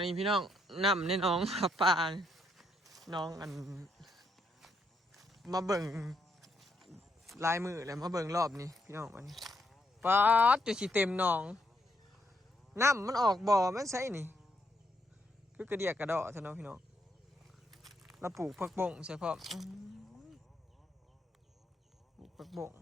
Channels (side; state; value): both; normal; correlation 0.76